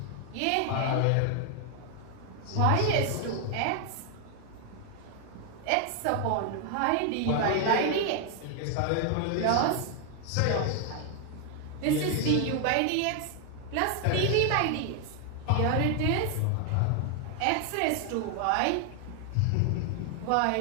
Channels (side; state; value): both; different; correlation 0.01